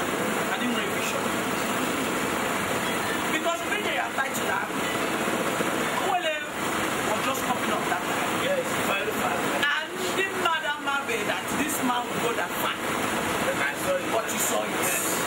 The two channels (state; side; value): identical; both; correlation 1.00